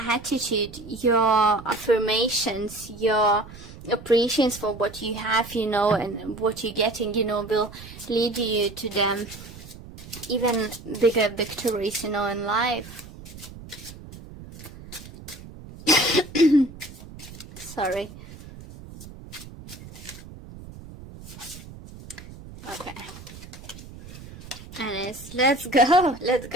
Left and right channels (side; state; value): right; noise; rumble, 16 dB below the sound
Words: your affirmations, your appreciation for what you have, you know, and what you're getting, you know, will lead you to them even bigger victories, you know, in life. Sorry. Okay. And it's, let's